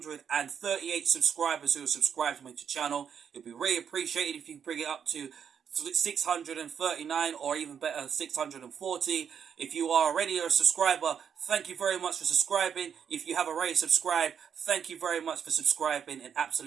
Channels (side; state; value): left; quieter; 7.7 dB